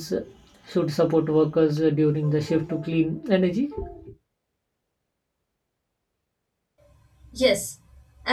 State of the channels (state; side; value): identical; both; correlation 1.00